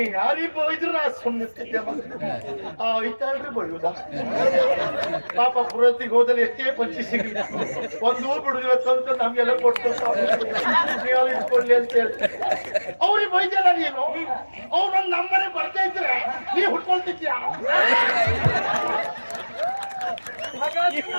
ಯಾರಿಗೆ ಬೈದ್ರು ನಾ ಸುಮ್ಮನಿರ್ತಿದ್ದೆ. ಐತಾಳ್ರಿ ಬೈಯುವುದ? ಪಾಪ ಪುರೋಹಿತಿಗೆ ಹೋದಲ್ಲಿ ಎಷ್ಟೇ ಪಂಚಿ ಸಿಗಲಿ ಒಂದು ಬಿಡುದಿಲ್ಲ ತಂತು ನಮ್ಗೆಲ್ಲ ಕೊಟ್ಟು ನೀವು ಇಟ್ಕೊಳ್ಳಿ ಅಂತ ಹೇಳಿ ಅವ್ರಿಗೆ ಬೈದ್ಯಲ್ಲ ನೀನು. ಅವ್ರು ನಮ್ಮನೆ ಬರ್ತಾ ಇದ್ರೆ ನೀ ಹುಟ್ಕೊಳ್ತಿದ್ಯಾ? ಹಾಗಾಗಿ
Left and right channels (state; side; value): inverted; both; correlation -1.00